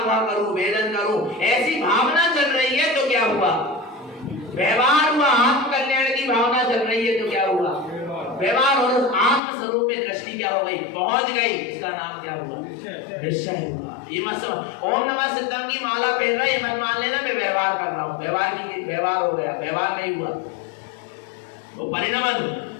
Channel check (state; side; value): drops out; right; at 9.4 s